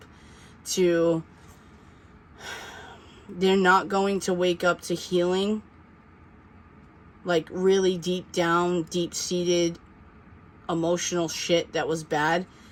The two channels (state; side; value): identical; both; correlation 1.00